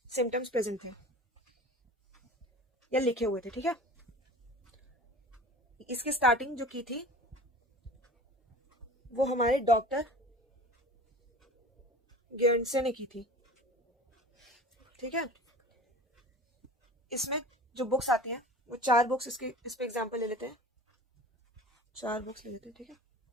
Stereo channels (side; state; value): both; normal; correlation 0.39